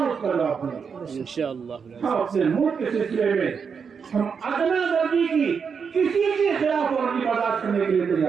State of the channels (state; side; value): quieter; left; 6.2 dB